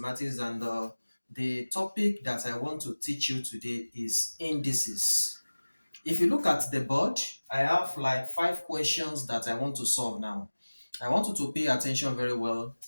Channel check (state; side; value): inverted; both; correlation -1.00